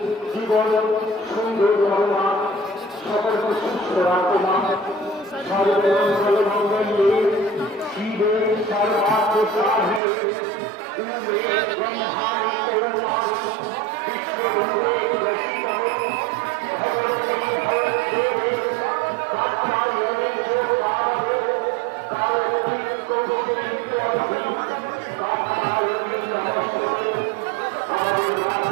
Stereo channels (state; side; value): drops out; left; at 10.0 s